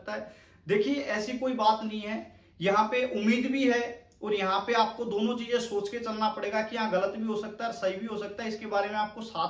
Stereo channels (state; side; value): identical; both; correlation 1.00